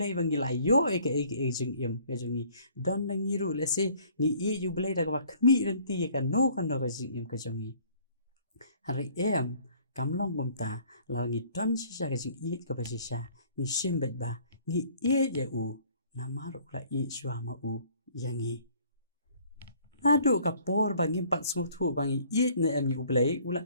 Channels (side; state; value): both; inverted; correlation -0.57